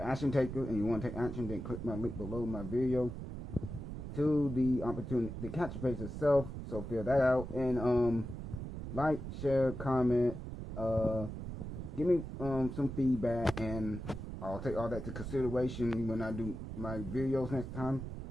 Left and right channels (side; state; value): right; noise; rumble, 7 dB below the sound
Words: action taker and you want to take action, then click my link below my video to the opportunity, the capture page itself. So fill that out, and like, share, comment, give me some feedback, and I'll take all that to consideration when I do my videos next time,